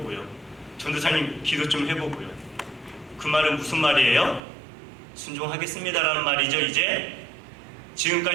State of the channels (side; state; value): left; drops out; at 4.4 s